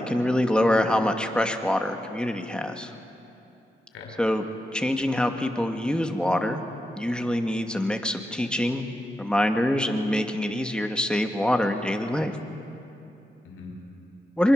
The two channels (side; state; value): both; normal; correlation 0.88